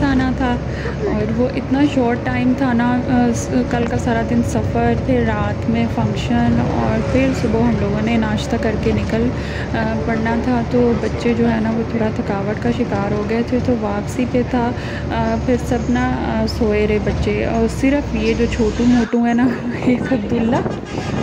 आना था, और वो इतना शॉर्ट टाइम था ना, कल का सारा दिन सफ़र, फिर रात में फ़ंक्शन, और फिर सुबह हम लोगों ने नाश्ता करके निकल पड़ना था। तो बच्चे जो है ना वो थोड़ा थकावट का शिकार हो गए थे, तो वापसी पे था। फिर सब ना सोए रहे बच्चे, और सिर्फ ये जो छोटू मोटू है ना, एक अब्दुल्ला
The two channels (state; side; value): identical; both; correlation 1.00